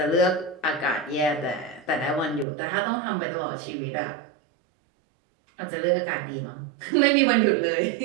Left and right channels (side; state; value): left; drops out; at 2.5 s